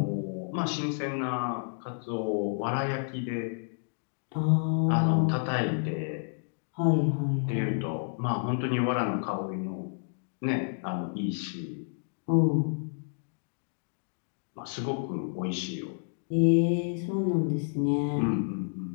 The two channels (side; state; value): right; silent; 58 dB below the other